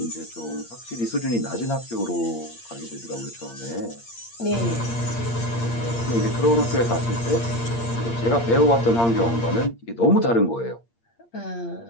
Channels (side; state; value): right; late; 8.6 ms